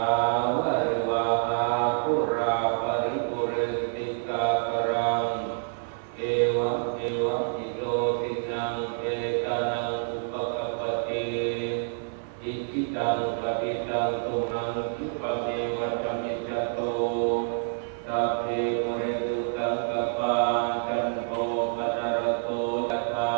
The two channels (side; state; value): left; silent; 60 dB below the other